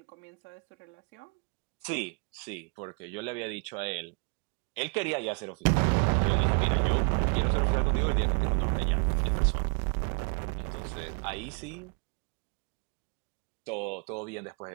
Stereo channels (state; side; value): quieter; left; 36.5 dB